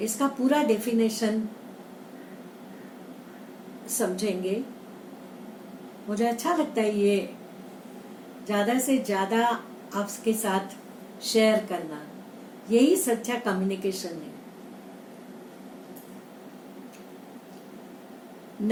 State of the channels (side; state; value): both; identical; correlation 1.00